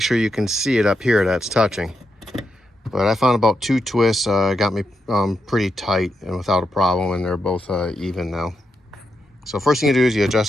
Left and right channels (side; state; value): both; normal; correlation 0.84